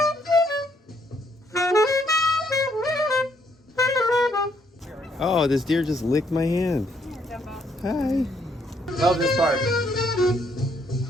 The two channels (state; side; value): normal; both; correlation 0.70